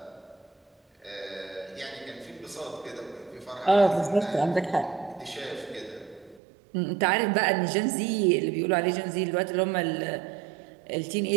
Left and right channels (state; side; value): drops out; left; at 6.4 s